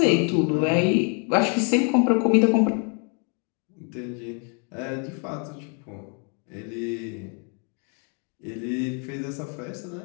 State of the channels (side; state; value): right; quieter; 38.3 dB